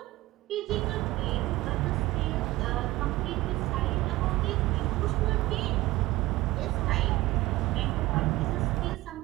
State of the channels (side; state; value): left; quieter; 18.6 dB